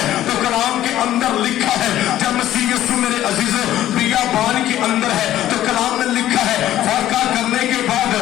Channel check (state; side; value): quieter; right; 13.1 dB